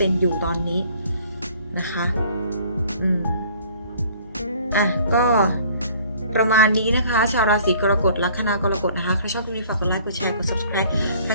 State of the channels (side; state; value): both; inverted; correlation -0.54